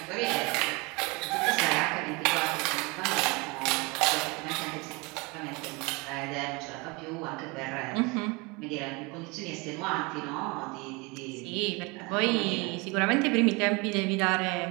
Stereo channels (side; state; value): left; quieter; 26.9 dB